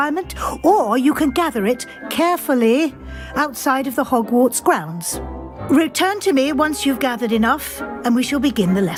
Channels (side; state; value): both; identical; correlation 1.00